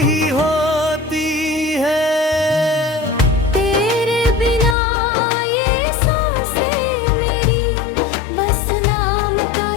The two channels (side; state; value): right; drops out; at 4.8 s